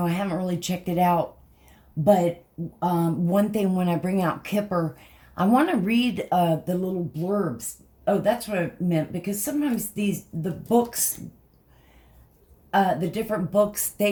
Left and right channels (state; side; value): identical; both; correlation 1.00